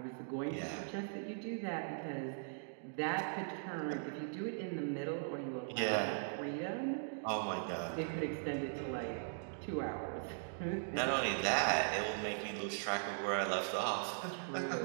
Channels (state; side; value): silent; left; digital silence